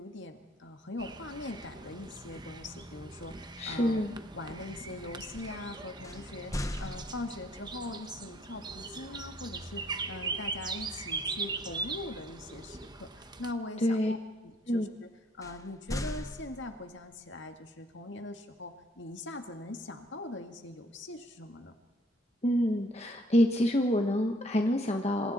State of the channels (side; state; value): both; normal; correlation 0.63